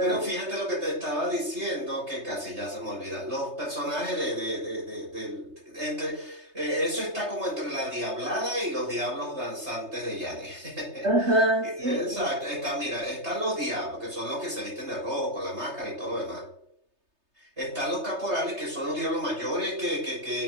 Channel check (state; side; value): late; left; 3.3 ms